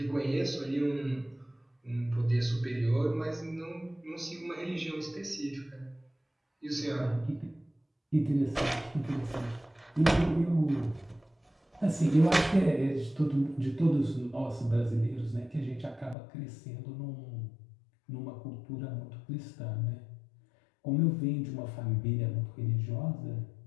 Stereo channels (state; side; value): drops out; right; at 16.2 s